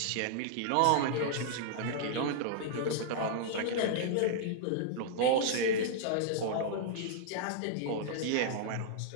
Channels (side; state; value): both; different; correlation -0.01